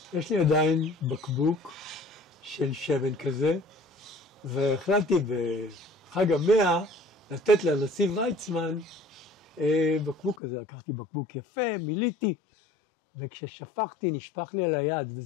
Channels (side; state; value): right; drops out; at 10.4 s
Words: יש לי עדיין בקבוק של שמן כזה, והחלטתי בחג ה100 לתת לנשיא ויצמן בקבוק הזה. לקחתי בקבוק יפה, מיליתי, וכששפכתי נשפך לי על היד,